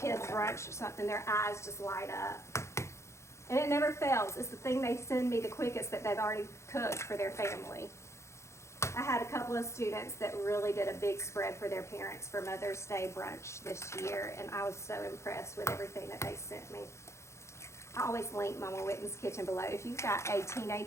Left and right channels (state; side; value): late; right; 0.14 ms